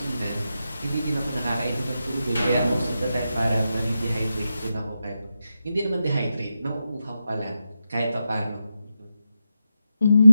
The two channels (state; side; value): inverted; both; correlation -0.88